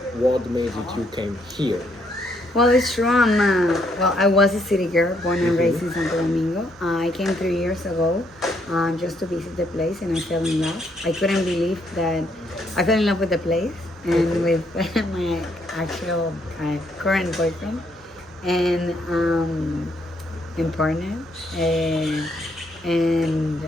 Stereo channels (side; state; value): both; normal; correlation 0.72